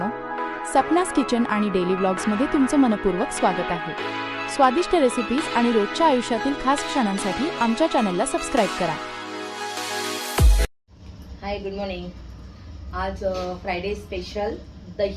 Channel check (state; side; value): identical; both; correlation 1.00